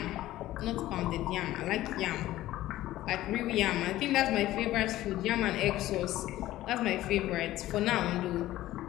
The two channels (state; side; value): quieter; right; 15.2 dB